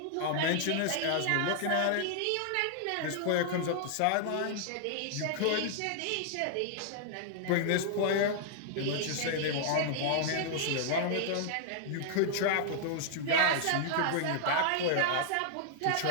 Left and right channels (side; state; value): both; different; correlation -0.01